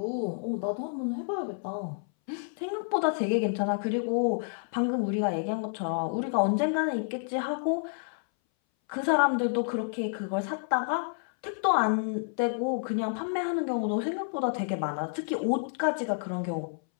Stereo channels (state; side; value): silent; right; 58 dB below the other